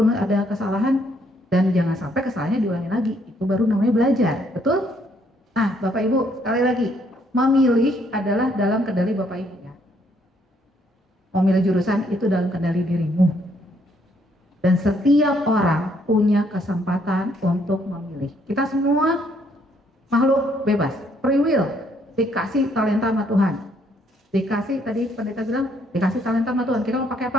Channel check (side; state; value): both; normal; correlation 0.69